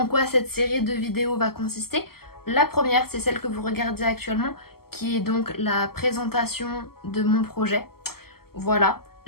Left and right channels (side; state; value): right; late; 0.95 ms